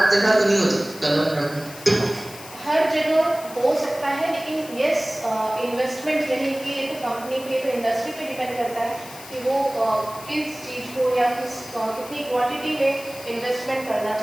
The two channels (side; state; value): left; noise; hiss, 16 dB below the sound